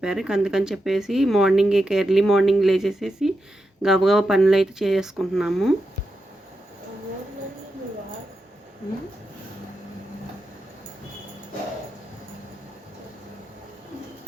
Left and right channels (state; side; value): normal; both; correlation 0.87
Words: అందుకని చెప్పేసి మార్నింగ్ ఇక ఎర్లీ మార్నింగ్ లేచేసేసి గబగబా పనులైతే చేసుకుంటున్నాము.